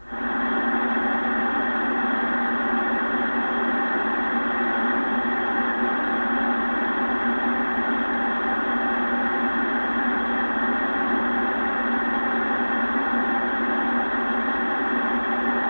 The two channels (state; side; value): inverted; both; correlation -1.00